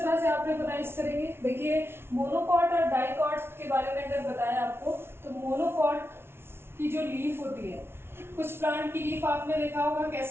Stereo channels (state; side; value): late; left; 0.12 ms